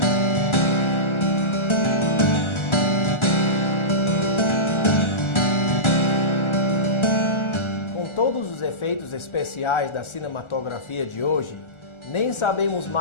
Todos os efeitos especiais da cinematografia de hoje, nem sabemos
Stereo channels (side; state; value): right; late; 1.4 ms